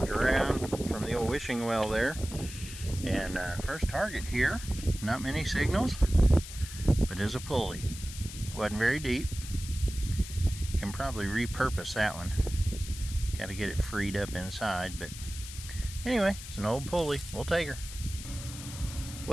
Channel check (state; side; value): noise; left; hiss, 12 dB below the sound